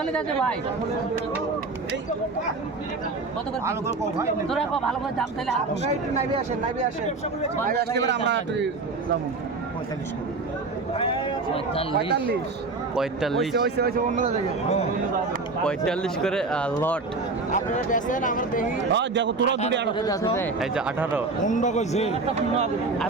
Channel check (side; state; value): left; quieter; 3.7 dB